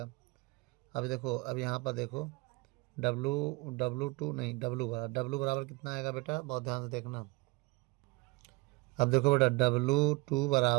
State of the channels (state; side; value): quieter; left; 24.8 dB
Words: अब देखो, अब यहाँ पर देखो डब्लू बराबर कितना आएगा बेटा, बहुत ध्यान से देखना। अब देखो बेटा डब्लू